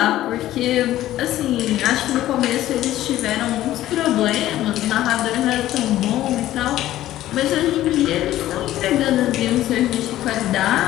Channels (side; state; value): right; quieter; 14.1 dB